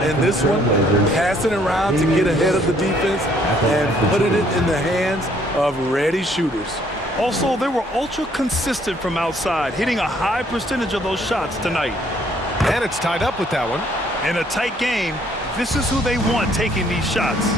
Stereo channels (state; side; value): normal; both; correlation 0.64